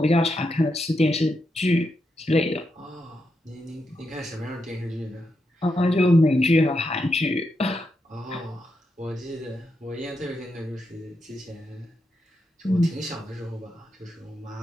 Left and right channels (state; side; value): normal; both; correlation 0.84